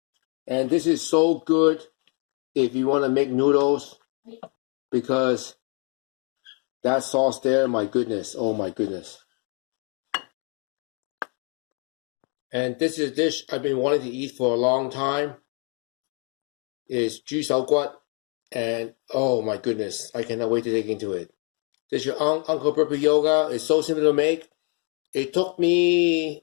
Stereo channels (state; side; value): quieter; right; 37.8 dB